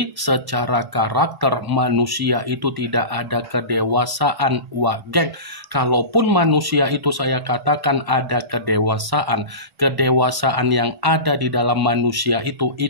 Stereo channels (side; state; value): left; late; 1.1 ms